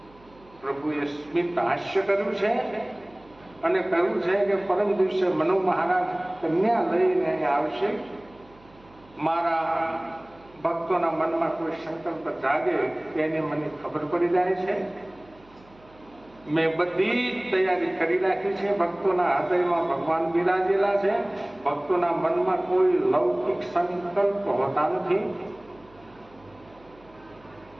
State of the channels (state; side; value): noise; right; hum, 27 dB below the sound